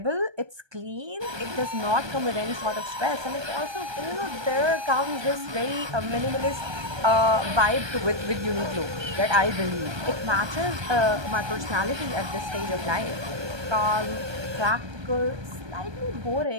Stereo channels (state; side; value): late; left; 1.2 ms